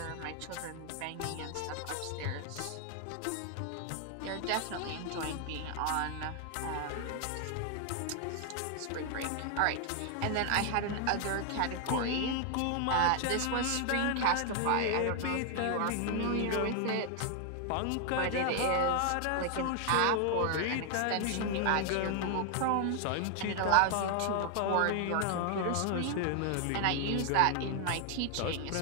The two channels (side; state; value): both; different; correlation 0.00